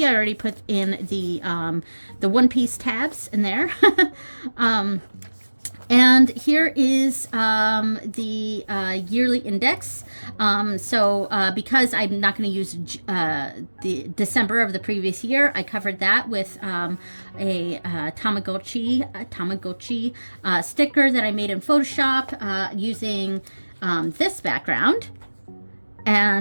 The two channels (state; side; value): inverted; both; correlation -1.00